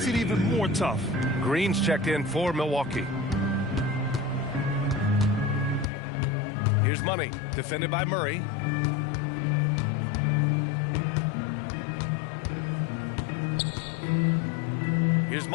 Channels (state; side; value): drops out; right; at 5.9 s